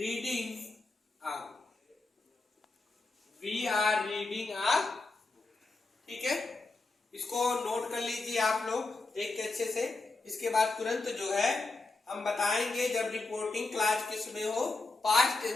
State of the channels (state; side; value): quieter; right; 3.4 dB